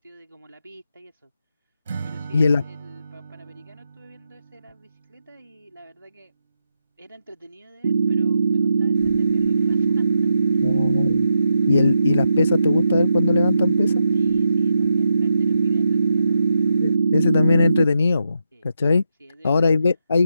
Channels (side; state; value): both; inverted; correlation -0.84